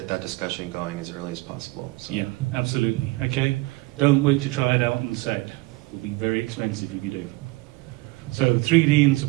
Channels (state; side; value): quieter; left; 21.5 dB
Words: that discussion going as early as possible. So. Yeah, absolutely. Okay, don't wait to try it out on set. It will be very expensive if you do. So 3D in